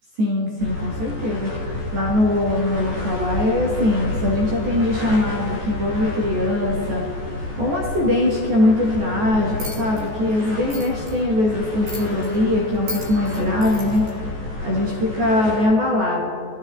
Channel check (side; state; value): left; late; 14 ms